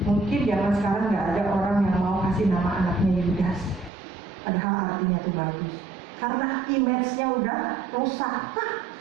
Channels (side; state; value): left; drops out; at 3.9 s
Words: Mungkin zaman sekarang nggak ada orang yang mau kasih nama anaknya Yudas, padahal artinya itu bagus. Karena image-nya udah rusak,